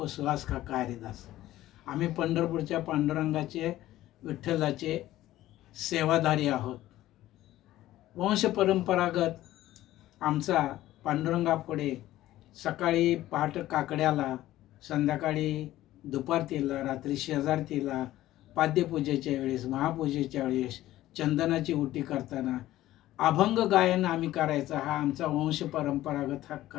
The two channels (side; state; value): right; quieter; 14.9 dB